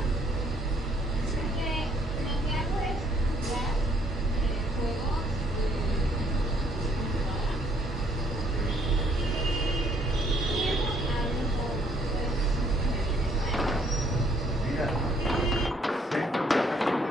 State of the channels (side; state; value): both; normal; correlation 0.66